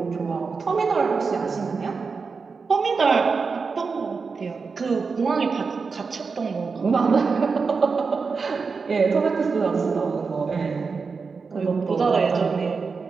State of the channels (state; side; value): quieter; left; 4.9 dB